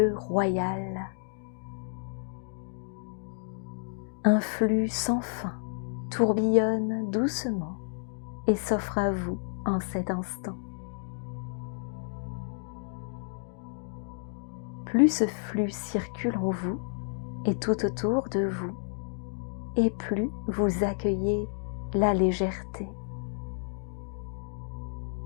royal. Un flux sans fin tourbillonne doucement et s'offre à vous en cet instant. Plus ce flux circule en vous et tout autour de vous, et plus vous accueillez la légèreté.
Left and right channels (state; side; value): silent; right; digital silence